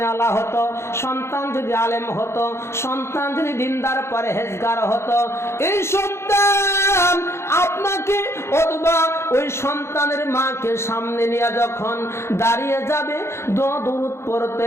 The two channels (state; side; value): late; right; 0.13 ms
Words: হতো, সন্তান যদি আলেম হতো, সন্তান যদি দিনদার পরহেজগার হতো, এই সন্তান আপনাকে অথবা ওই সন্তানের মাকে সামনে নিয়ে যখন দাঁড়িয়ে যাবে, দোয়া দরুদ